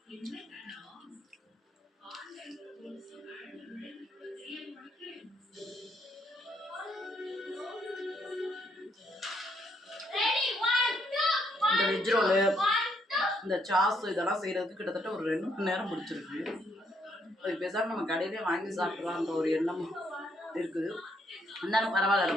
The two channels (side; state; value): both; normal; correlation 0.72